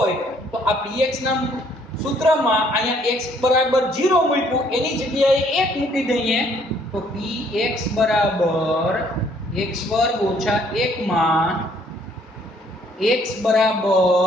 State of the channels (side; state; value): both; normal; correlation 0.64